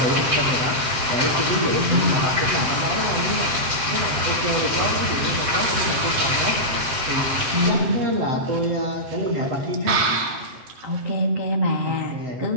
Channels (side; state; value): left; late; 7.7 ms